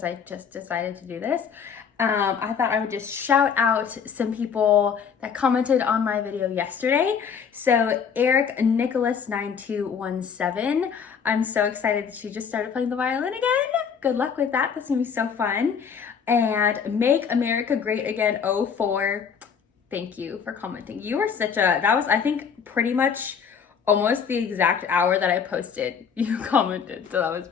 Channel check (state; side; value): quieter; right; 6.8 dB